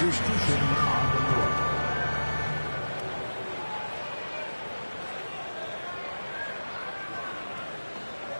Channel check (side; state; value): both; inverted; correlation -1.00